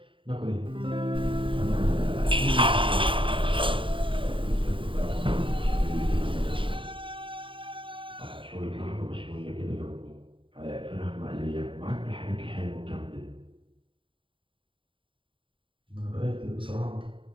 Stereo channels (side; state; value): left; late; 0.25 ms